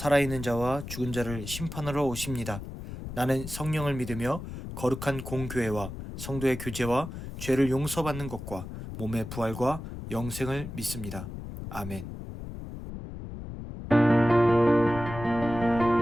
자와 죽은 자를 심판하러 오십니다. 나는 성령을 믿으며 거룩한 공교회와 성도의 교제와 죄를 용서받는 것과 몸의 부활과 영생을 믿습니다. 아멘.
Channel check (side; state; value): left; noise; rumble, 9 dB below the sound